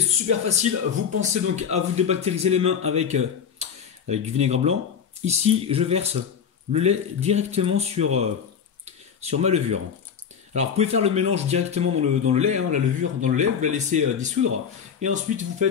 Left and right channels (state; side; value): quieter; right; 7.4 dB